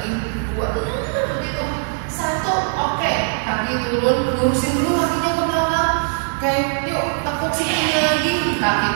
2, begitu, 1, oke, kaki turun, lurusin dulu kakinya ke belakang, oke, yuk tepuk sikunya lagi, kaki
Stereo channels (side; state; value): left; silent; 60 dB below the other